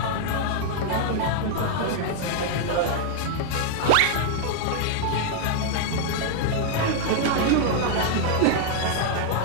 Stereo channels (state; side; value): different; both; correlation 0.00